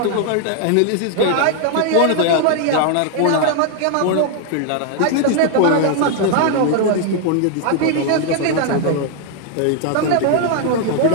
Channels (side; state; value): both; different; correlation 0.00